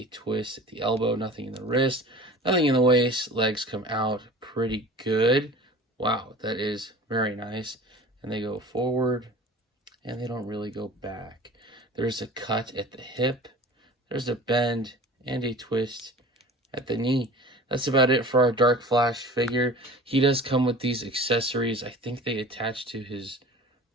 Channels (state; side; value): normal; both; correlation 0.41